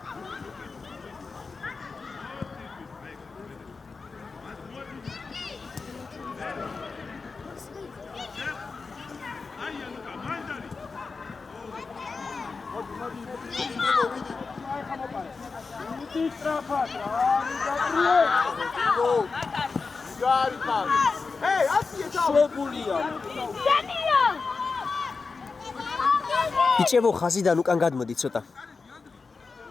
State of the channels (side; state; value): right; quieter; 4.5 dB